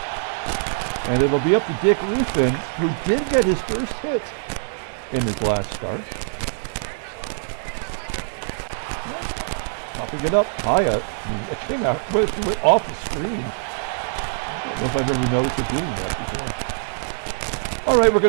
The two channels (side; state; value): left; silent; digital silence